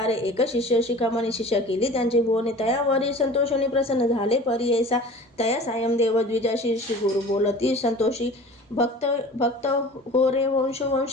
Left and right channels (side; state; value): both; normal; correlation 0.41